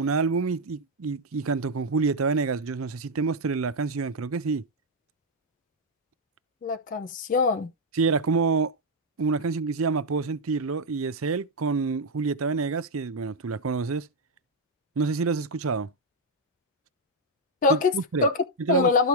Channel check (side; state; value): both; normal; correlation 0.00